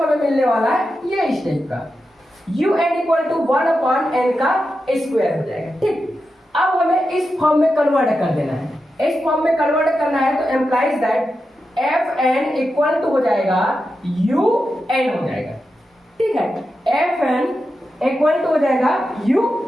हमें मिलने वाला है ये इस टाइप का un इक्वल टू 1/n का स्क्वायर हो जाएगा। ठीक, अब हमें इस फॉर्म में कन्वर्ट कर देना है। इस फॉर्म में कन्वर्ट करना है तो implies that fn equal to हो जाएगा un हो जाएगा। ठीक है, fn इक्वल टू हो जाएगा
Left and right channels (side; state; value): both; normal; correlation 0.89